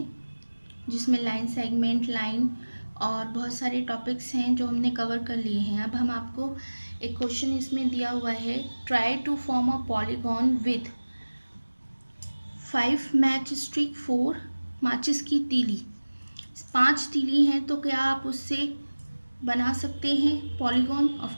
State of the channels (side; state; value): both; inverted; correlation -1.00